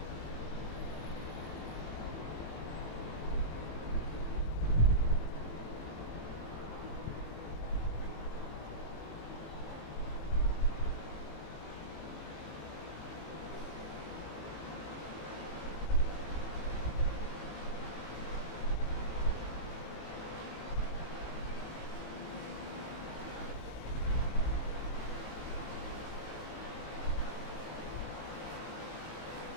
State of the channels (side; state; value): right; late; 18 ms